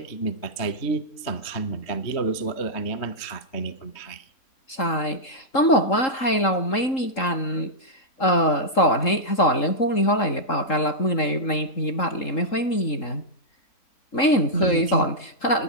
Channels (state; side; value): late; right; 3.7 ms